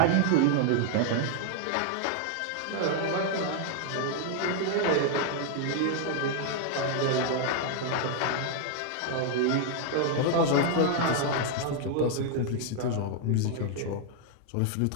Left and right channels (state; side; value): different; both; correlation 0.00